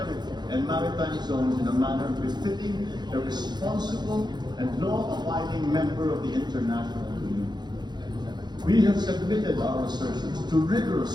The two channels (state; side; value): late; left; 0.21 ms